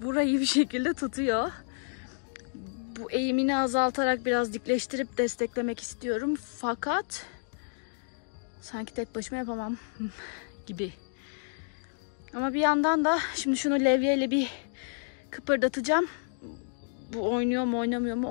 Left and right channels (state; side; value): silent; right; digital silence